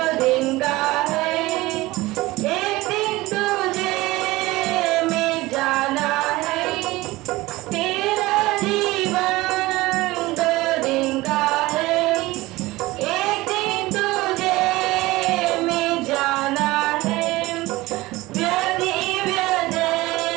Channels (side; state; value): left; quieter; 19.6 dB